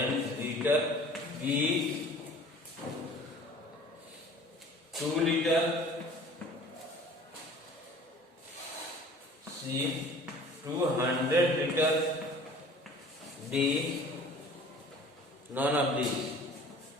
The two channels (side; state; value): both; normal; correlation 0.47